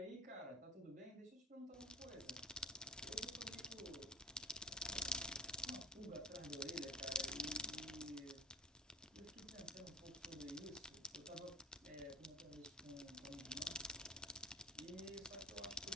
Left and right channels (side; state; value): both; normal; correlation 0.35